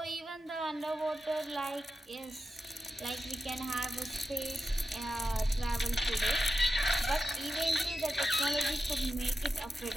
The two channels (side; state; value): both; normal; correlation 0.90